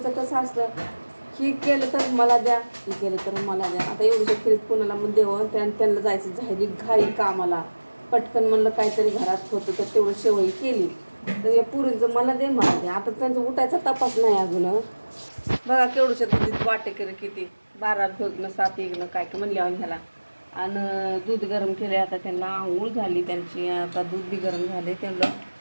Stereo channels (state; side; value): inverted; both; correlation -1.00